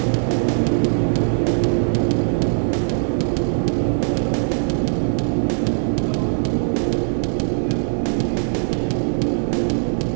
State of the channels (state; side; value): silent; left; 63 dB below the other